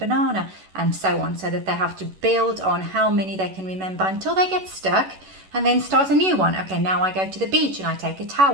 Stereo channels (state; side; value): late; left; 11 ms